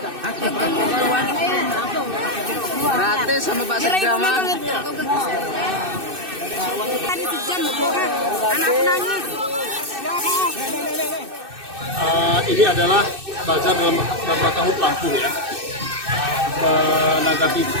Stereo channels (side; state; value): left; late; 2.6 ms